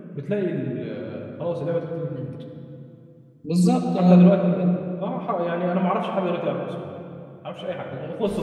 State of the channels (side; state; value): both; identical; correlation 1.00